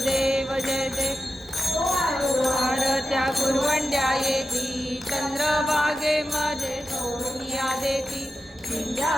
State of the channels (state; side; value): normal; both; correlation 0.92